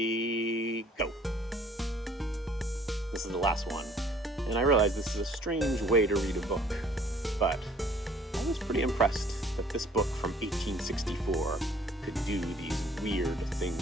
go. This is the last one. And I realize this is a strange way to read a book, but I was pretty impressed that this book from 1864 could do these weird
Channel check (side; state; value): both; normal; correlation 0.56